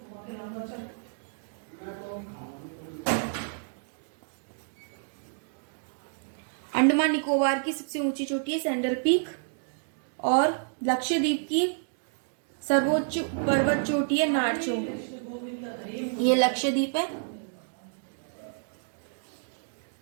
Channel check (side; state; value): left; silent; digital silence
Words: अंडमान निकोबार की सबसे ऊंची चोटी है सैंडल पीक। और लक्षद्वीप की सर्वोच्च पर्वत चोटी है नारचो। ये लक्षद्वीप है,